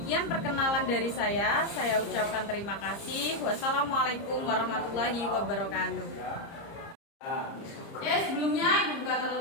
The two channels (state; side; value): late; right; 30 ms